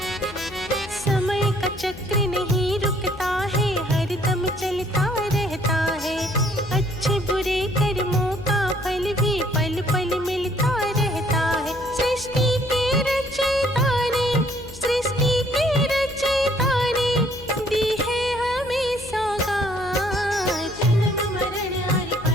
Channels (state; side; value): noise; left; hum, 16 dB below the sound